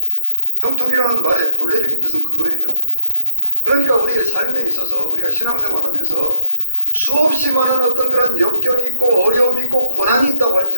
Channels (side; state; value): both; inverted; correlation -0.68